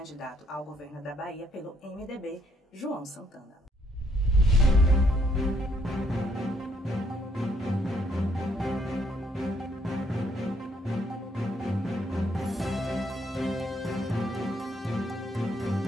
ao governo da Bahia pelo MDB, João Santana.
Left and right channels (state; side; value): normal; both; correlation 0.70